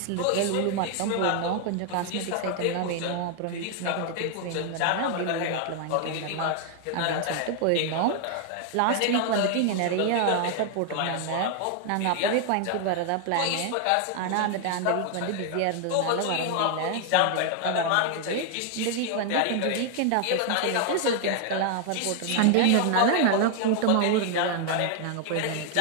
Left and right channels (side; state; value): both; different; correlation 0.00